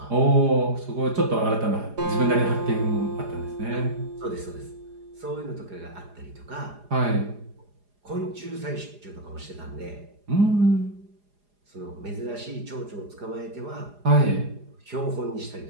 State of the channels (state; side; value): late; left; 4.9 ms